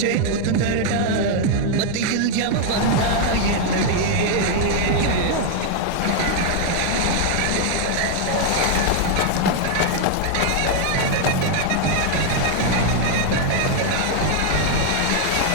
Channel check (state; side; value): different; both; correlation 0.00